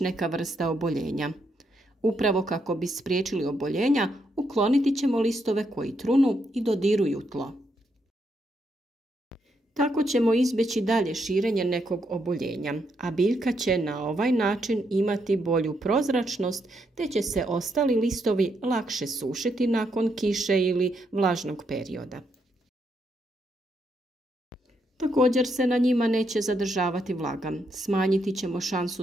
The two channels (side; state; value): both; normal; correlation 0.78